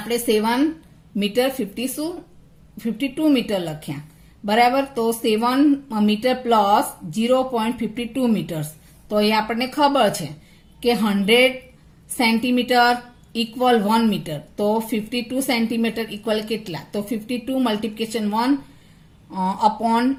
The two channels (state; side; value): identical; both; correlation 1.00